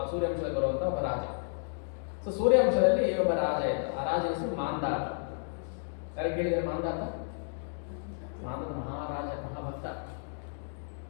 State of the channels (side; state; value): right; silent; digital silence